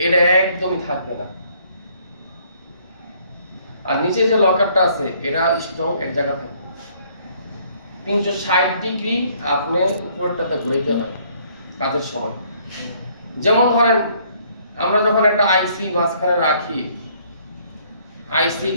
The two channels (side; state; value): both; inverted; correlation -0.63